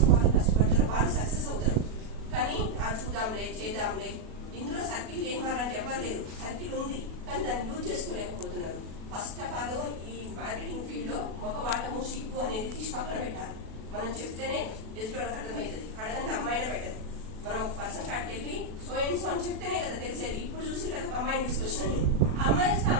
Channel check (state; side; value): late; left; 37 ms